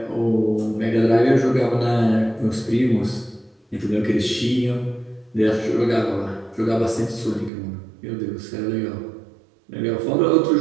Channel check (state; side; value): drops out; left; at 7.5 s